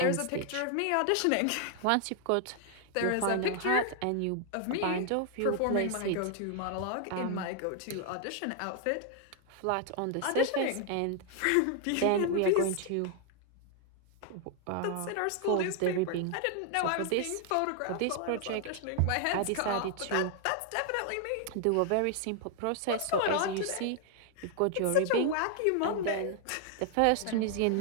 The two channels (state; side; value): different; both; correlation 0.00